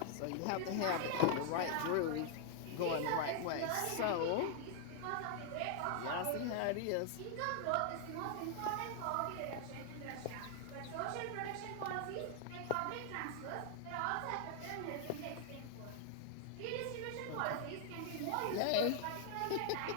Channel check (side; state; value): both; different; correlation 0.00